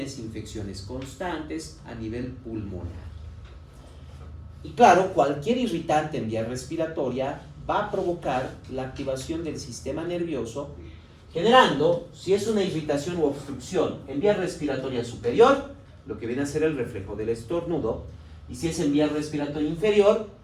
infecciones constantes a nivel pulmonar. Y claro, cualquier irritante en vía respiratoria va a provocar la activación del sistema nervioso, generando, si es una irritación u obstrucción en vía respiratoria superior, lo que viene a ser el reflejo del estornudo, y si es en vía respiratoria inferior,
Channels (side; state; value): both; identical; correlation 1.00